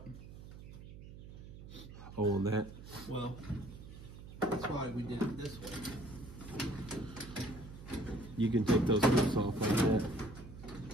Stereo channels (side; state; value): right; noise; hum, 14 dB below the sound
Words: Oh, on that. Well, that's why we did it this way. You can take those hooks off like that.